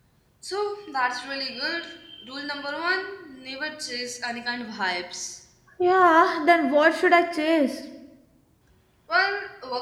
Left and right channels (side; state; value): both; identical; correlation 1.00